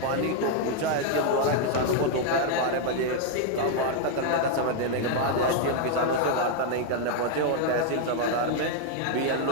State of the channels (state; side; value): different; both; correlation 0.00